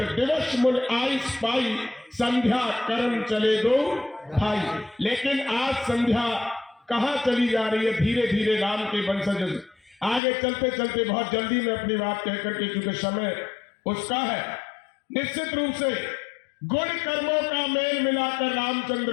दिवस मुन आयुष पाई, संध्या कर्म चले दो भाई। लेकिन आज संध्या कहाँ चली जा रही है, धीरे धीरे राम के वंशज आगे चलते चलते बहुत जल्दी में अपनी बात कहकर के, क्योंकि समय उसका है। निश्चित रूप से गुण कर्मों का मेल मिलाकर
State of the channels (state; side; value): drops out; right; at 10.2 s